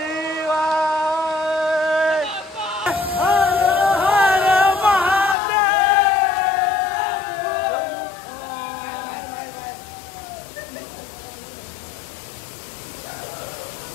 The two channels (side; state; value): right; drops out; at 5.4 s